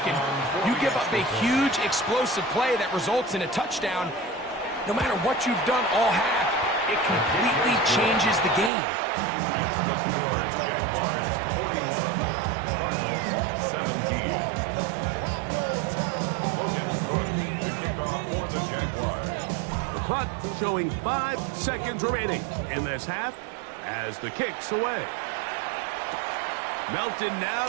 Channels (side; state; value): left; drops out; at 8.7 s